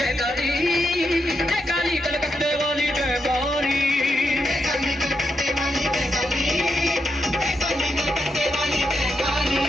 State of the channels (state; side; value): normal; both; correlation 0.83